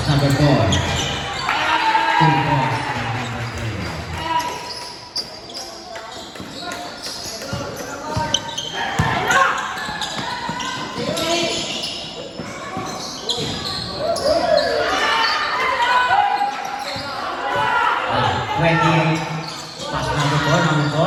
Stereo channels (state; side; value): identical; both; correlation 1.00